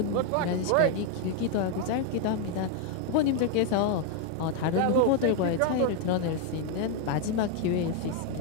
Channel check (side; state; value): both; different; correlation 0.00